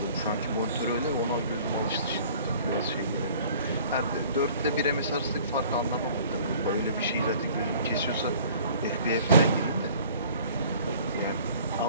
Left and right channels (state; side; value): inverted; both; correlation -0.51